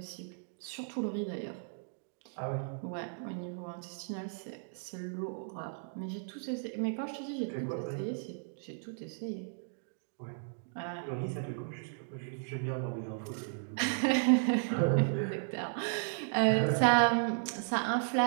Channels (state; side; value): silent; left; digital silence